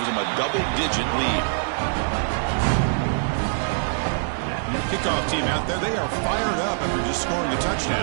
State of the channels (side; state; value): left; silent; digital silence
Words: them a double-digit lead. Kickoff team out there, they are fired up after just scoring a